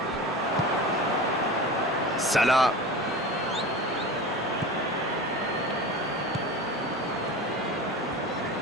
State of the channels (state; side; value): normal; both; correlation 0.32